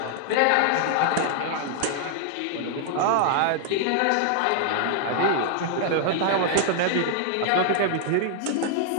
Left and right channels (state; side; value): different; both; correlation -0.01